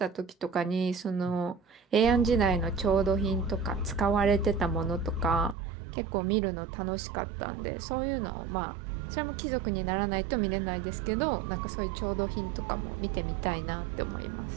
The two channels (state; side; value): drops out; left; at 5.6 s